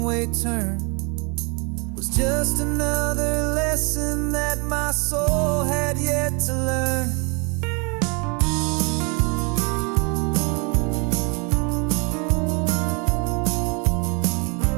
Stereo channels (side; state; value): left; quieter; 32.9 dB